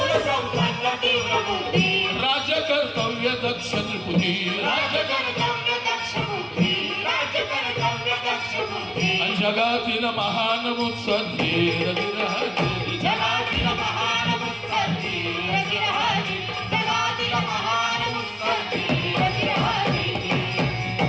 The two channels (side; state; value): both; identical; correlation 1.00